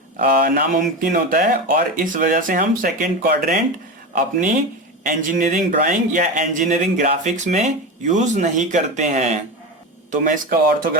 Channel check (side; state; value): both; normal; correlation 0.22